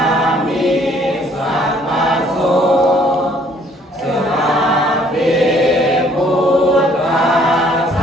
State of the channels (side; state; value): both; normal; correlation 0.61